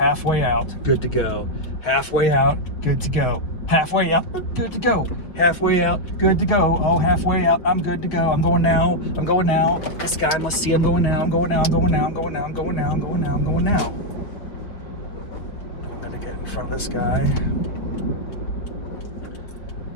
out, good to go. Halfway out, good to go. Halfway out, good to go. Halfway out, good to go. Oh, halfway out, I'm good to go. I'm going now. This guy must see I'm going now. I'm going now. I'm going now. I'm going now. I'm going to get in front of this guy.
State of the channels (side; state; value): right; late; 5.9 ms